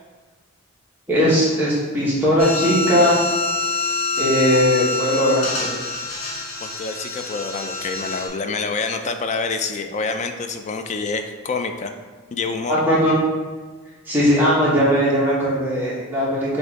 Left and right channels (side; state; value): both; normal; correlation 0.17